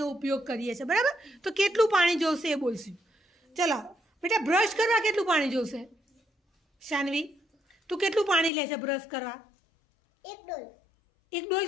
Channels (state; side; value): drops out; right; at 8.5 s